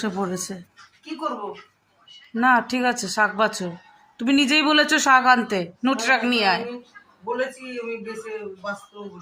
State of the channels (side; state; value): both; identical; correlation 1.00